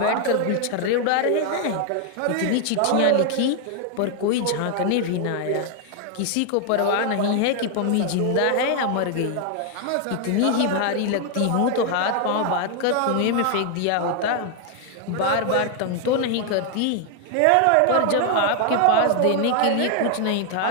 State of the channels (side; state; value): both; different; correlation 0.00